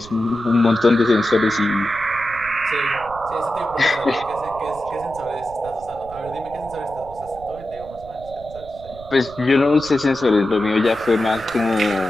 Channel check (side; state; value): right; noise; rumble, 18 dB below the sound